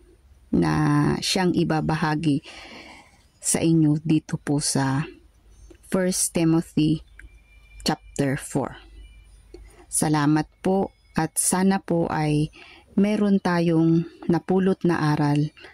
na siyang ibabahagi sa inyo dito po sa 1 Timothy chapter 4. Salamat po at sana po ay meron tayong napulot na aral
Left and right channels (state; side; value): identical; both; correlation 1.00